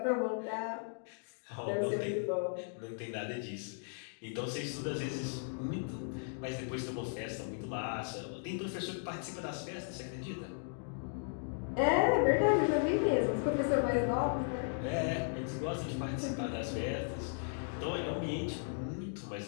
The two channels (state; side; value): silent; right; digital silence